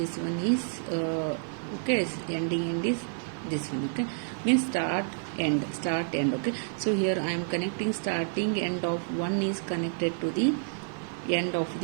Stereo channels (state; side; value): silent; left; digital silence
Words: one is okay, ending end is this one. Okay, means start end. Okay, so here I am connecting starting end of one is connected to the end of